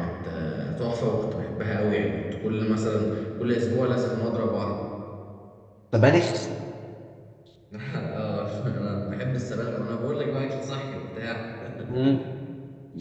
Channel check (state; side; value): identical; both; correlation 1.00